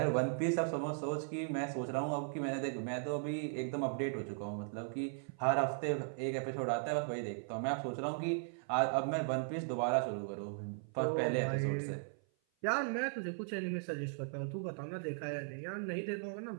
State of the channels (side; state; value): left; silent; 53 dB below the other